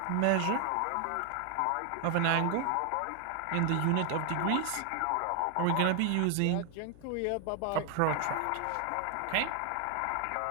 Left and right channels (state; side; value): different; both; correlation 0.00